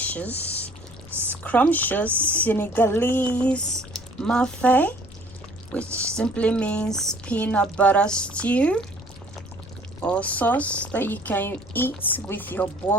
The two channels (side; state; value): left; noise; rumble, 19 dB below the sound